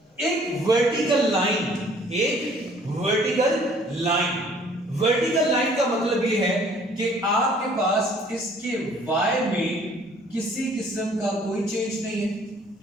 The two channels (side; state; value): both; normal; correlation 0.57